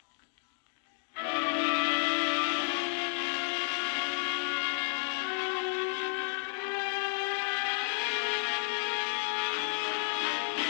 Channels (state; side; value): silent; right; 56 dB below the other